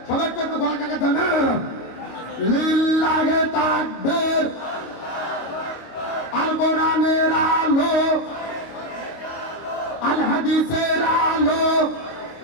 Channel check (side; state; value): right; late; 25 ms